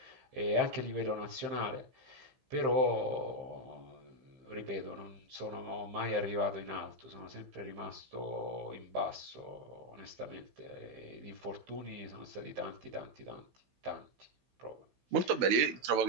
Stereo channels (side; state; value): left; late; 15 ms